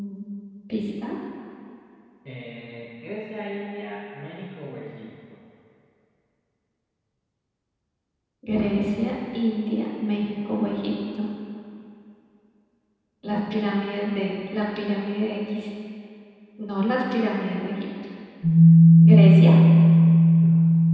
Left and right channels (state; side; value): identical; both; correlation 1.00